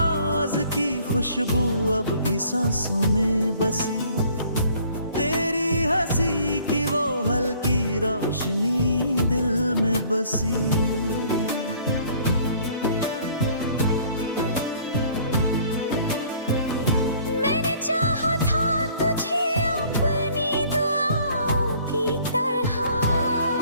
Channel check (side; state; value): both; inverted; correlation -0.57